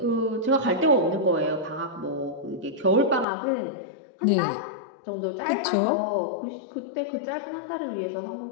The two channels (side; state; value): right; drops out; at 3.2 s